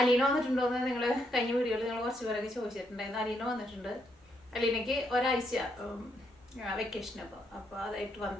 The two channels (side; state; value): both; normal; correlation 0.76